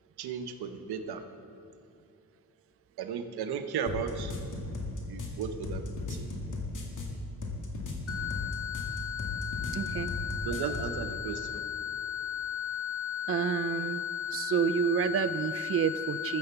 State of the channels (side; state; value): both; normal; correlation 0.29